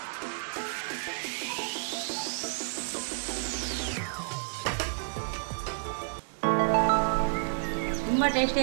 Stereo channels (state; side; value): silent; left; digital silence